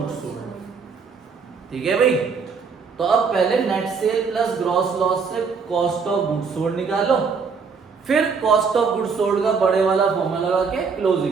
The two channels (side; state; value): left; quieter; 5.4 dB